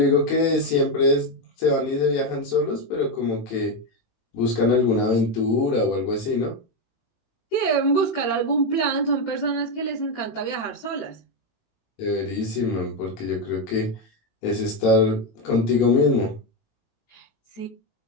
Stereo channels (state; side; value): late; right; 18 ms